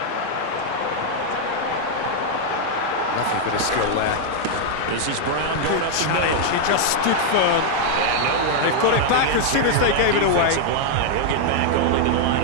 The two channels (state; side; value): different; both; correlation 0.00